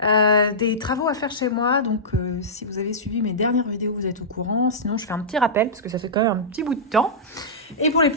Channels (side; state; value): both; normal; correlation -0.16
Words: Des travaux à faire chez moi, donc si vous avez suivi mes dernières vidéos, vous êtes au courant. Sinon, je fais un petit rappel parce que ça fait quand même un petit bout de temps. Et pour les